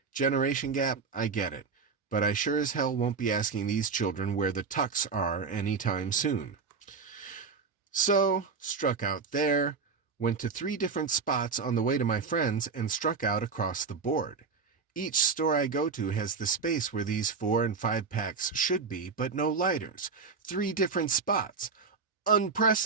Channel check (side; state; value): left; quieter; 5.0 dB